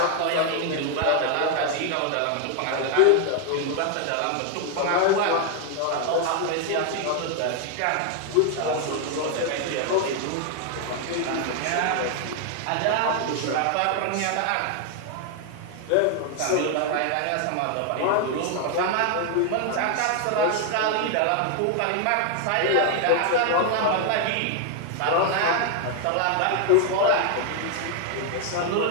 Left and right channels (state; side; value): different; both; correlation 0.00